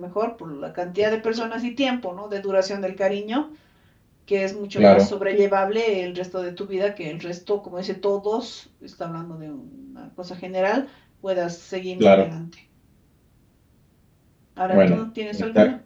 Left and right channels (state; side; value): identical; both; correlation 1.00